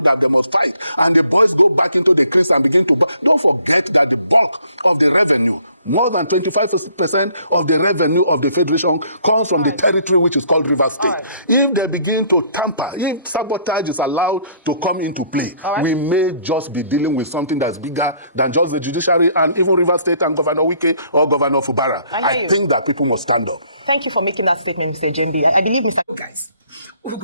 that they must fight, and the boys go back into the crease and begin to don't forget that the bulk of the revenue, more than 25% of the revenue of the federation, comes from the territory which is called Rivers State. If they begin to tamper, if sabotage is allowed to come into play, we may just be dealing with something that's bigger than just the judiciary and even Rivers State and Governor Wike or Governor Fubara. I think that people must stand up. Thank you for making that statement, Mr. Jembi. I believe Mr. Guys,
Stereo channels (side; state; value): both; inverted; correlation -0.63